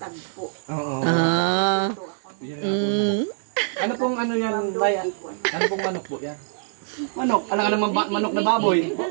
Oo. Ah. Ano pong ano yan, Bay? Ano pong manok po yan? Manok. Alam ka naman manok na baboy.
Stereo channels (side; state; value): left; silent; digital silence